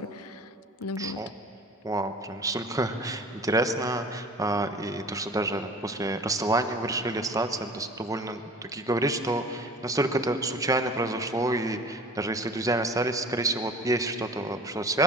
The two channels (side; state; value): both; normal; correlation 0.43